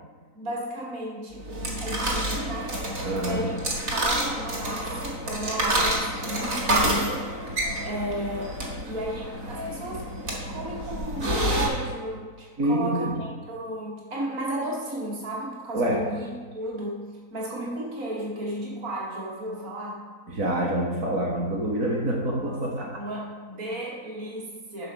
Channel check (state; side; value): late; left; 3.9 ms